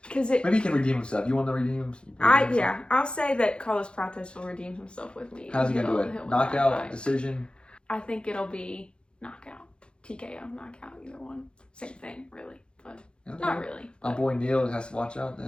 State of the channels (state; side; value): late; right; 0.054 ms